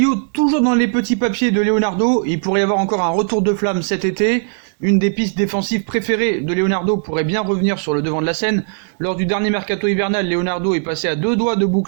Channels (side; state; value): left; silent; 57 dB below the other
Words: toujours dans les petits papiers de Leonardo, il pourrait y avoir encore un retour de flamme cet été. Une des pistes défensives préférées de Leonardo pourrait bien revenir sur le devant de la scène. Lors du dernier mercato hivernal, Leonardo est passé à 2 doigts de